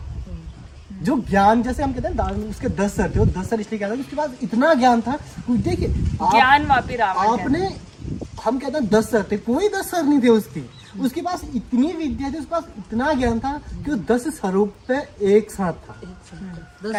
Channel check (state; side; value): identical; both; correlation 1.00